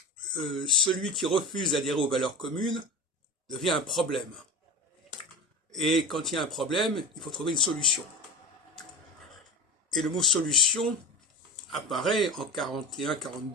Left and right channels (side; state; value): both; normal; correlation 0.30